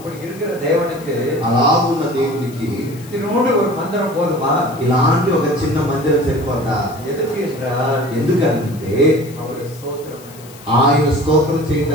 இருக்கிற தேவனுக்கு అలాగున్న దేవునికి இதனோடு ஒரு மந்திரம் போதுமா? ఇలాంటి ఒక చిన్న మందిరం సరిపోతా? எதுக்கு என்றால் ఎందుకంటే அவருடைய ஸ்தோத்திரம், ఆయన స్తోత్రం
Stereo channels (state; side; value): noise; left; hiss, 21 dB below the sound